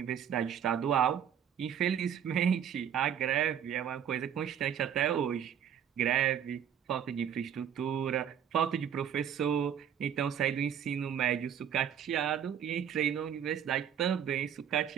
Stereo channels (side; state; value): left; quieter; 8.9 dB